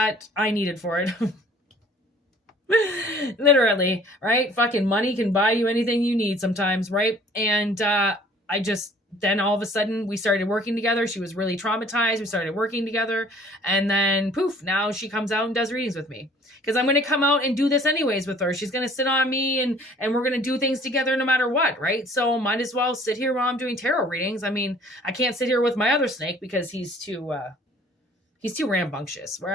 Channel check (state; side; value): normal; both; correlation 0.53